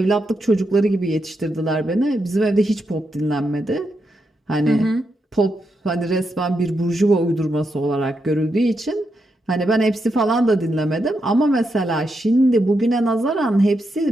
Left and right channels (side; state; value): both; normal; correlation 0.83